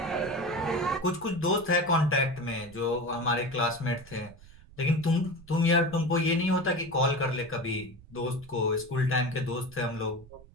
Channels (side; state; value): right; noise; rumble, 22 dB below the sound